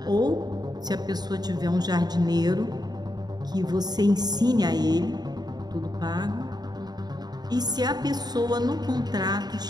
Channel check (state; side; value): late; left; 0.20 ms